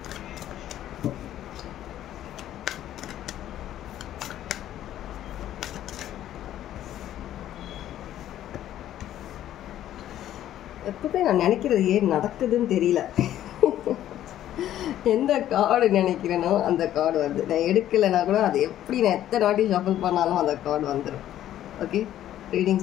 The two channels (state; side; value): quieter; right; 12.1 dB